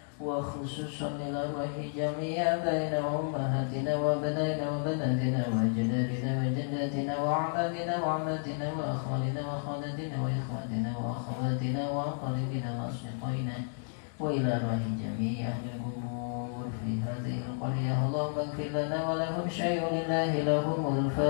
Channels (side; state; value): right; silent; digital silence